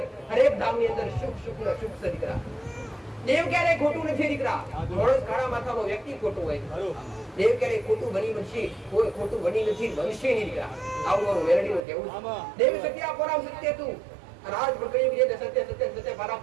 હરેક ધામ ની અંદર સુખ છે દીકરા. દેવ ક્યારેય ખોટું નથી દીકરા. માણસ કાળા માથાનો વ્યક્તિ ખોટું હોય, દેવ ક્યારેય ખોટું બની બનશે, કોઈ ખોટું બની નથી, બનશે નહીં દીકરા. આવું મારું મેરડીનું કહેવું. દેવ સત્ય પરામ સત્ય તું. અને આજ પણ કહ્યું છે સત્ય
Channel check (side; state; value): left; drops out; at 11.8 s